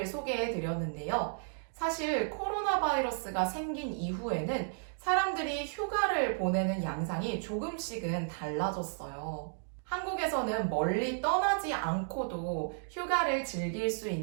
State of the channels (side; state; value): left; silent; digital silence